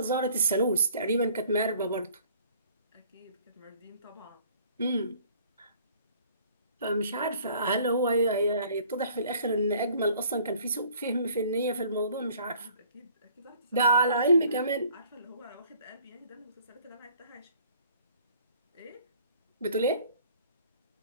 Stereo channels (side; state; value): both; inverted; correlation -0.56